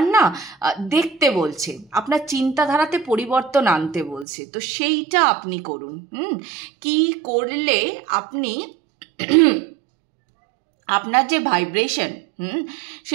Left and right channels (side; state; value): left; drops out; at 4.2 s